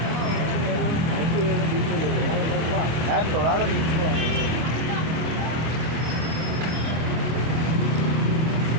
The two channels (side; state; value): left; late; 25 ms